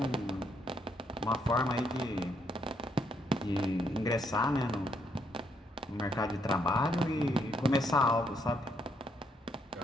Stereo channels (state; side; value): normal; both; correlation 0.74